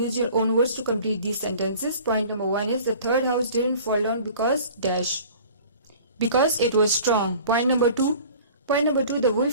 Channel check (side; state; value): both; inverted; correlation -0.46